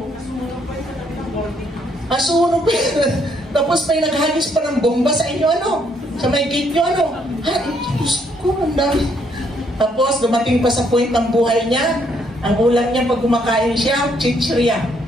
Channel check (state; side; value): normal; both; correlation 0.70